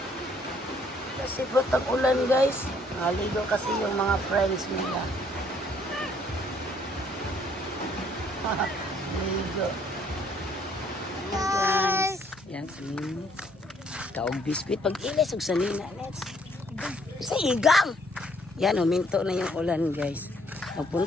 Kasi butang ulan guys. Naligo kasi yung mga friends nila. Ligo. Guys. Yan si Ninits. Kaog biskuit. Pag ilis og sanina. Let's. Sa igang. Yan, huminto na yung ulan guys.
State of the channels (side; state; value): both; normal; correlation 0.65